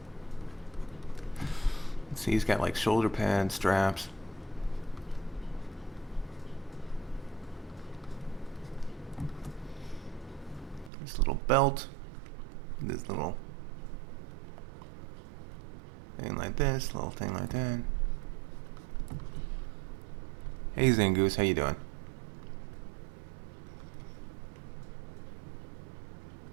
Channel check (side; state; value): left; drops out; at 10.9 s